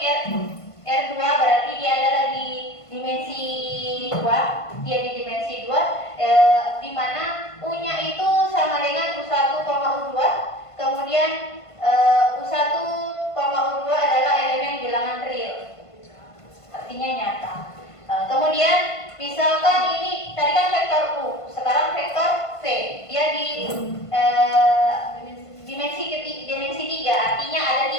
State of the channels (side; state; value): right; late; 1.5 ms